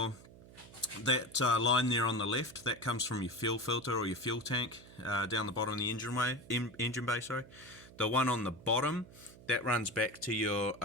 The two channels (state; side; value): noise; right; hum, 20 dB below the sound